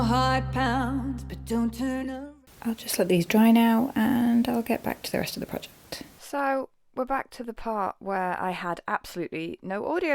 heart pounds, but don't turn around. I'll just let these dry now and I'll get back to the rest of the project. So we're back to the part where I had absolutely no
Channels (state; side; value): identical; both; correlation 1.00